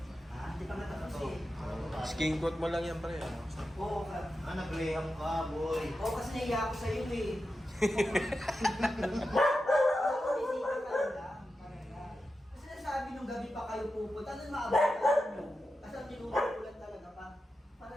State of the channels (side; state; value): both; normal; correlation 0.91